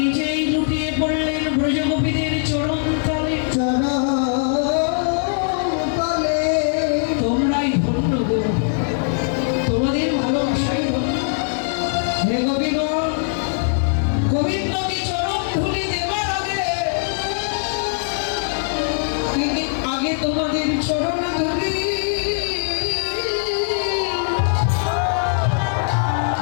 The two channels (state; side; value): silent; right; 65 dB below the other